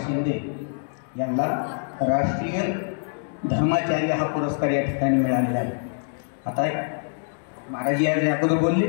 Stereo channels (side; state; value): right; silent; digital silence